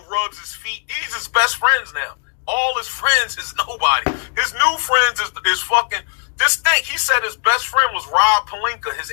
rubs his feet. These his best friends now. All his friends is nobody. His new friends is fucking. Just think, he said his best friend was Rob Pelinka, his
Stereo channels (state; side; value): silent; right; 67 dB below the other